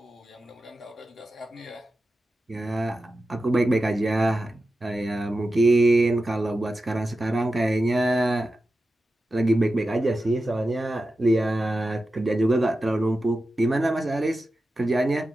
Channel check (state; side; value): normal; both; correlation 0.92